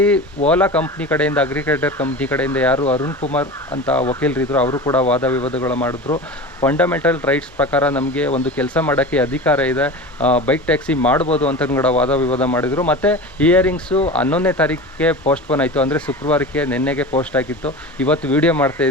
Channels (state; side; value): normal; both; correlation 0.31